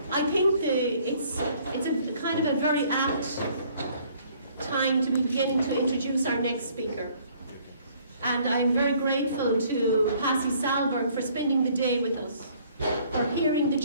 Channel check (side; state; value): both; inverted; correlation -0.60